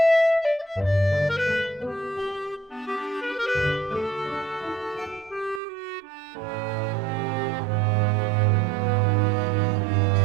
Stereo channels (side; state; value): left; drops out; at 5.6 s